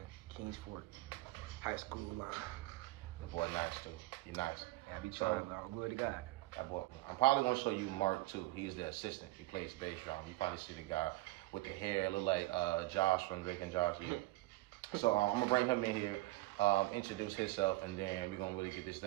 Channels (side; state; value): left; quieter; 19.1 dB